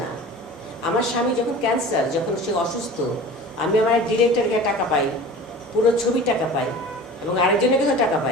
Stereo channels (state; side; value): normal; both; correlation 0.39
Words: না। আমার স্বামী যখন ক্যান্সার, যখন সে অসুস্থ, আমি আমার ডিরেক্টরকে টাকা পাই, পুরো ছবি টাকা পাই, এবং আরেকজনের কাছে টাকা